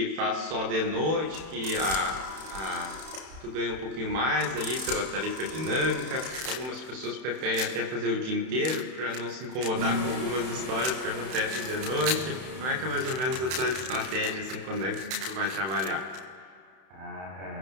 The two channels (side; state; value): left; late; 31 ms